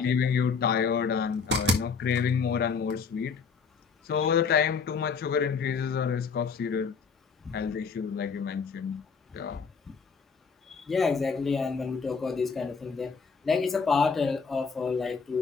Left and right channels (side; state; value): right; quieter; 5.5 dB